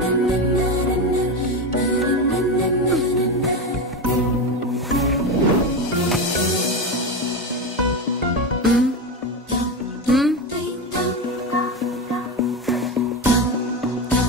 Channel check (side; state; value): both; normal; correlation 0.17